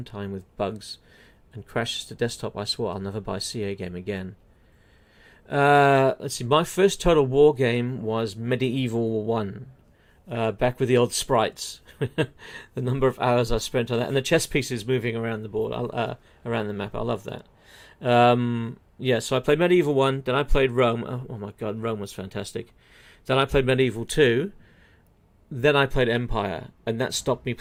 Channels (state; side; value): identical; both; correlation 1.00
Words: time with bugs and crashes to desktop. I swore I'll never buy a CA game again. Let's see. My first Total War game was Medieval 1. Back with the old sprites. The number of hours I spent on that. And the chess pieces moving around the board, around the map. I love that. Yeah, so I played Medieval 1. Then I played Rome. Oh my god, Rome was fantastic. Then I played Medieval 2. Then I played Empire. And that stopped me